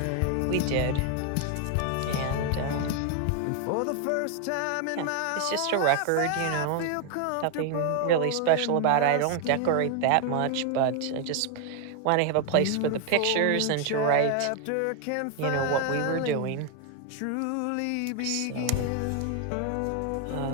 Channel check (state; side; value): different; both; correlation 0.01